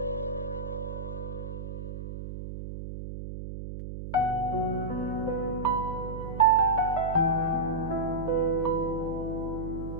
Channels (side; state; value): right; noise; hum, 8 dB below the sound